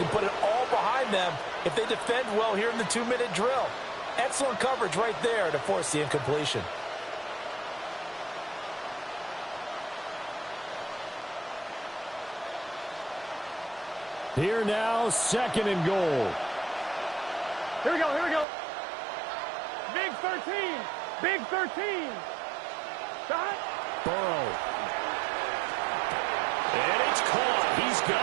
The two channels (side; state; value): left; drops out; at 18.4 s